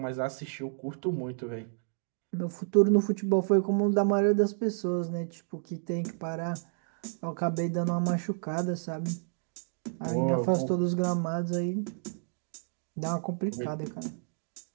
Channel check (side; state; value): left; silent; digital silence